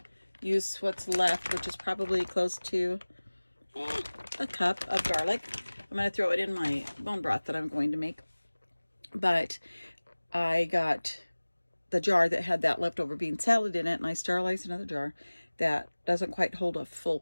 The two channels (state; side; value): inverted; both; correlation -1.00